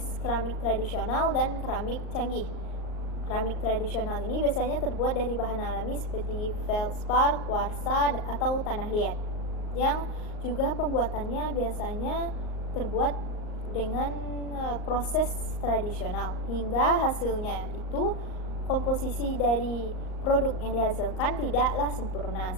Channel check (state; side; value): late; right; 38 ms